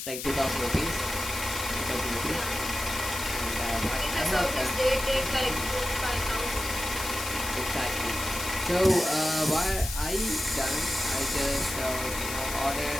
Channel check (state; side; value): noise; left; hiss, 6 dB below the sound